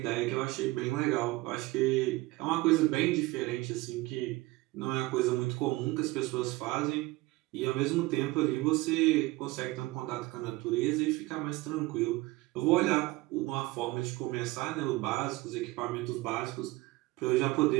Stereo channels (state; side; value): quieter; left; 20.5 dB